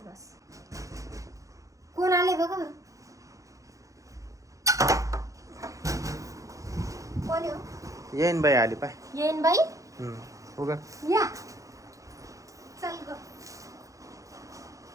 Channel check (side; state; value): left; late; 0.16 ms